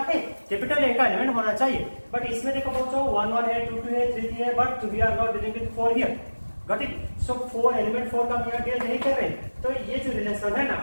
है? कैपिटल ए का एलिमेंट होना चाहिए। बट इसमें देखो बच्चों 1 1 है, 2 2 है, 3 3 है, but we are not dealing with 4 here. Got it? So 4 element 4 का हम यहाँ डील नहीं कर रहे, तो ये जो रिलेशन है ना,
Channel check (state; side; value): inverted; both; correlation -1.00